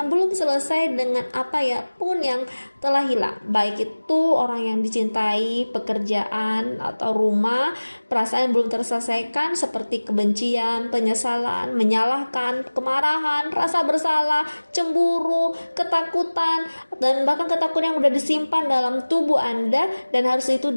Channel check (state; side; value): inverted; both; correlation -1.00